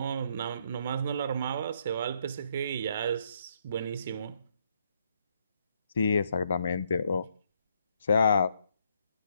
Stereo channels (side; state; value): both; inverted; correlation -0.72